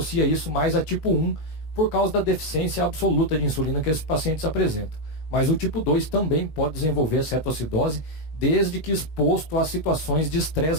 isso mais a tipo 1 por causa da deficiência absoluta de insulina que esses pacientes apresentam. Mas o tipo 2 também pode desenvolver cetoacidose, desde que exposto a situações de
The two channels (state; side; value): late; right; 19 ms